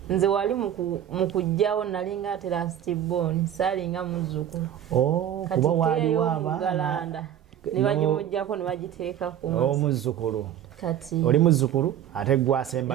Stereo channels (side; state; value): left; quieter; 10.5 dB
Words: nze wali mu kujjawo nalinga ate lastborn saalinga muzzukulu kuba waliwo abaana ne bagimuggyako ne bagiteeka ku omuzzukulu kati oli muzzukulu ate